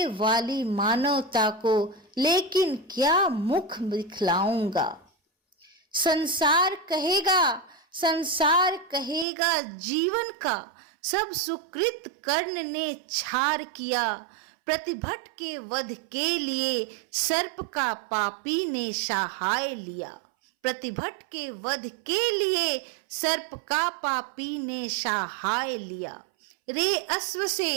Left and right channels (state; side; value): drops out; left; at 9.2 s